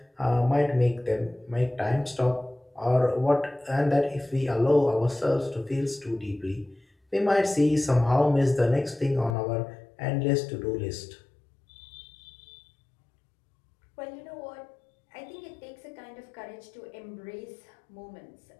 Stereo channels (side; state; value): right; drops out; at 9.3 s